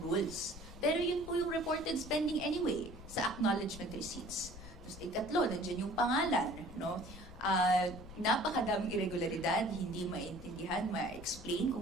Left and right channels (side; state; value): left; noise; rumble, 15 dB below the sound